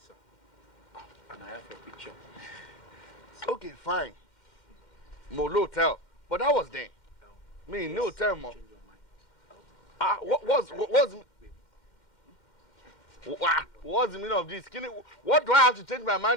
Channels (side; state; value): right; late; 2.1 ms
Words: And I have your picture. Okay, fine. Mo lo hotel, but that was then. Me no hotel mo. Change your mind. What's the meaning of this? What do I have to change my